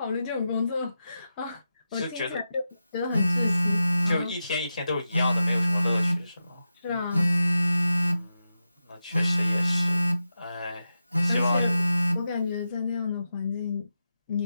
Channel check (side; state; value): both; inverted; correlation -0.90